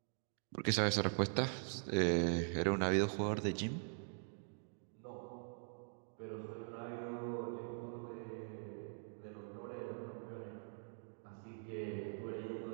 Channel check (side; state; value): left; silent; digital silence